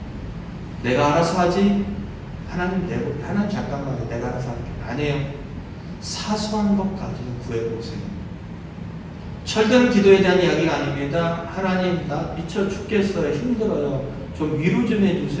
내가 알아서 하지. 하나님 잠깐만요. 내가 알아서 할게. 아니에요. 사소한 것까지는 구해보세요. 철든 기도에 대한 이야기가 아닙니다. 하나님 나 미쳐 죽겠어요. 힘들어요. 좀 위로 좀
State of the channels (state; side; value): identical; both; correlation 1.00